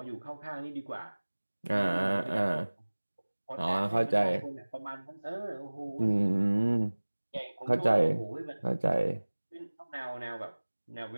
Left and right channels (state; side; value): inverted; both; correlation -1.00